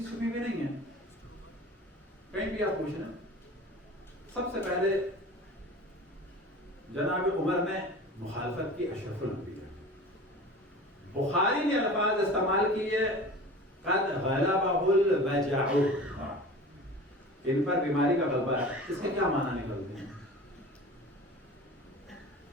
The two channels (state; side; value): normal; both; correlation 0.38